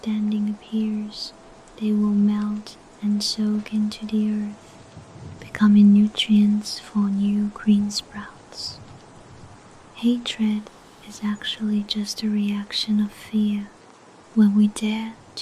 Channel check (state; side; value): identical; both; correlation 1.00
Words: appears, they will melt and soak into the earth, becoming nutrients for new green sprouts. Hatred is actually just a reaction of fear. When we dare